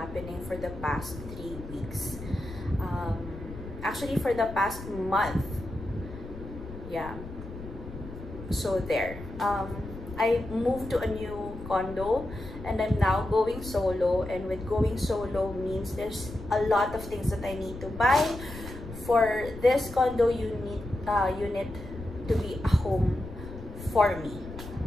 for the past 3 weeks. Actually for the past month. Yeah. So there. I moved to a new condo and I'm now going solo, and with going solo means there's a lot of things that I need to buy. For this condo unit to be a home for me.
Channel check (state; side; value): noise; left; rumble, 12 dB below the sound